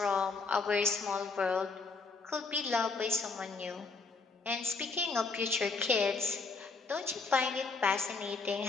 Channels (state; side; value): quieter; right; 4.3 dB